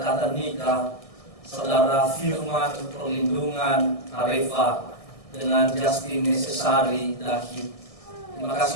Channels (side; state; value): right; late; 1.6 ms